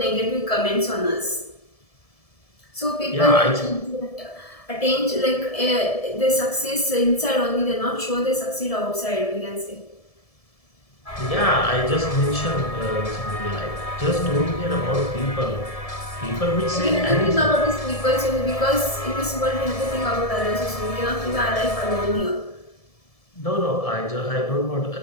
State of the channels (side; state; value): right; late; 1.7 ms